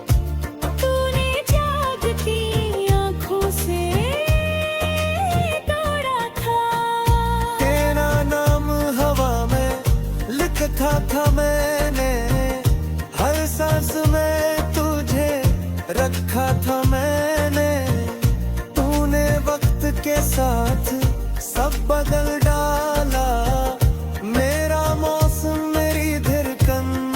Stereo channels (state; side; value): identical; both; correlation 1.00